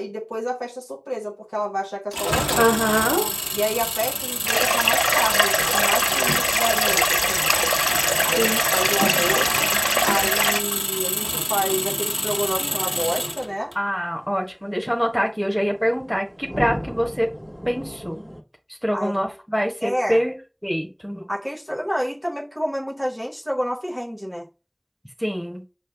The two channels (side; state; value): both; identical; correlation 1.00